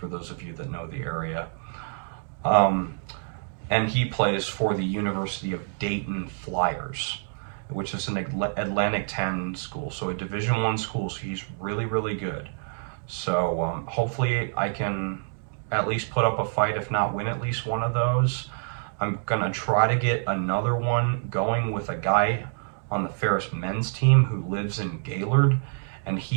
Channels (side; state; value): left; silent; digital silence